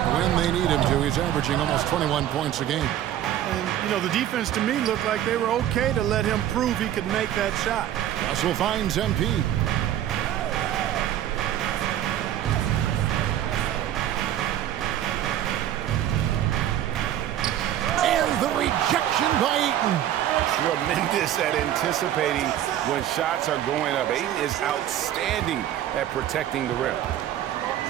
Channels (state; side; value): quieter; left; 11.7 dB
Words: when they need him to. He's averaging almost 21 points a game. And, you know, the defense to me looked like they were okay to let him prove he could make that shot. Russell finds MP. And the rejection by Ayton. Tremendous at anticipating when shots are going up. Ayton is outstanding at protecting the rim.